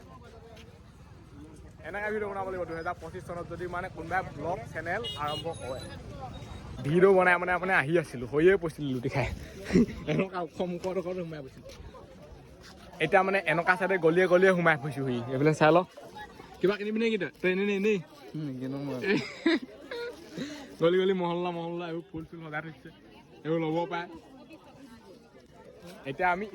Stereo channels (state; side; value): identical; both; correlation 1.00